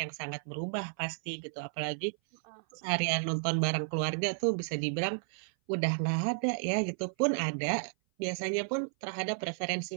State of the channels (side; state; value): left; silent; 56 dB below the other